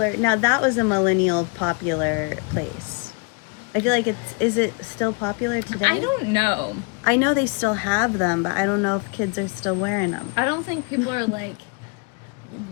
Now, that was a millennial popular place. I feel like is it still popular today? I don't know. I know they still have them, but I don't know if kids are still wearing them. I don't think people are like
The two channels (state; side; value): quieter; right; 32.3 dB